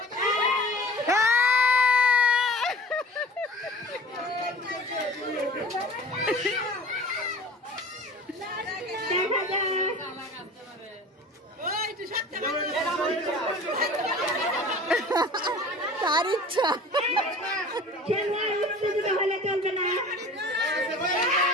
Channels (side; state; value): both; normal; correlation 0.42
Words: তার ইচ্ছা। খেলোয়াড় উত্তেজিত হলে